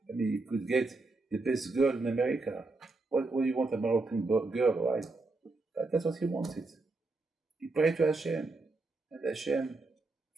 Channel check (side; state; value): left; quieter; 3.4 dB